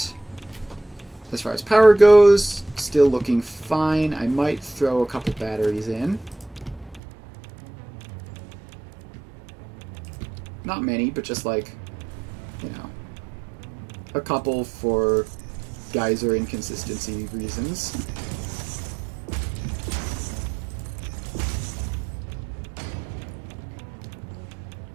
As far as power goes, still looking fine. I might throw a couple batteries in. Not many, but just like, you know, a couple for geyser inconsistency reasons.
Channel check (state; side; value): drops out; left; at 7.0 s